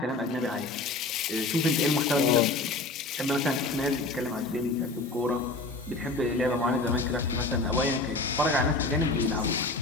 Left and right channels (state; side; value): quieter; right; 3.4 dB